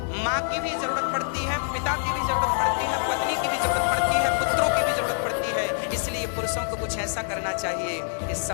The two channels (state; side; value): silent; right; 60 dB below the other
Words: माँ की भी जरूरत पड़ती है, पिता की भी जरूरत पड़ती है, पत्नी की भी जरूरत पड़ती है, पुत्रों की भी जरूरत पड़ती है। इसलिए पुरुषों को कुछ ऐसा करना चाहिए कि